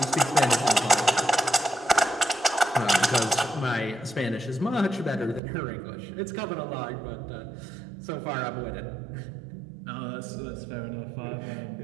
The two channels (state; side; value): drops out; left; at 5.4 s